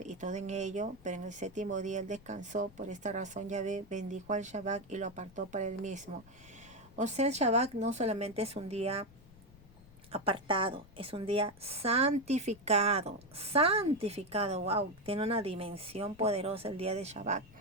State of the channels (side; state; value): left; noise; rumble, 23 dB below the sound